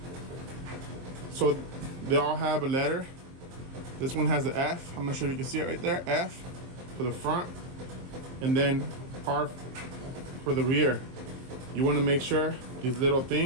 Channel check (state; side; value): late; left; 23 ms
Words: So they all have a letter. This one has an F. I'm not sure if you can see it right there. F for the front, and then R for the rear. You want to make sure these little